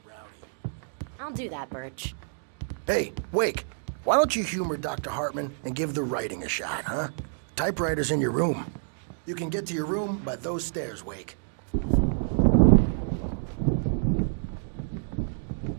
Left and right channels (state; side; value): silent; left; digital silence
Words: rowdy. I'll do that, Birch. Hey, Wake, why don't you humor Dr. Hartman and give the writing a shot, huh? Typewriter's in your room. You can get to your room by those stairs, Wake.